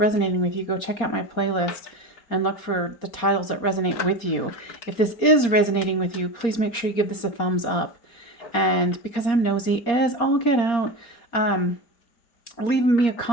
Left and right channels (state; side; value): late; right; 4.3 ms